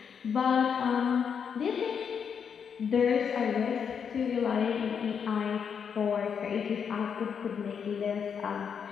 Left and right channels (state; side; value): quieter; right; 7.0 dB